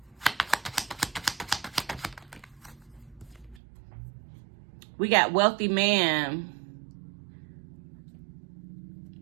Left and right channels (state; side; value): drops out; left; at 3.6 s